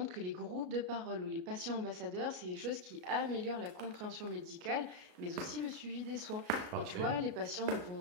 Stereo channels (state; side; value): late; left; 33 ms